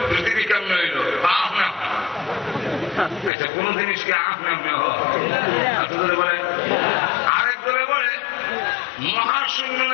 পৃথিবী কেমন হইল? আহ না, আচ্ছা কোন জিনিসকে আহ নামে হয়। বলে আরেক দলে বলে মহাশূন্য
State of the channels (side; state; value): right; drops out; at 3.3 s